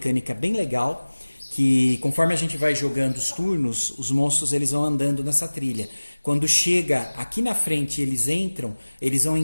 bem legal, que conforme a gente vai jogando os turnos, os monstros eles vão andando nessa trilha. Quando chega aqui na frente eles entram, eles vão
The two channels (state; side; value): inverted; both; correlation -1.00